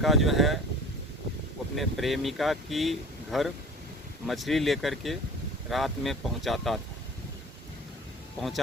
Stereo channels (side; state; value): both; normal; correlation 0.42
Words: जो है अपने प्रेमिका की घर मछली लेकर के रात में पहुंचाता